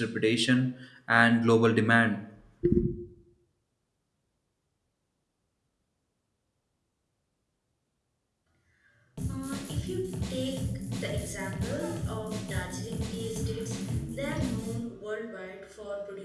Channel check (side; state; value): both; identical; correlation 1.00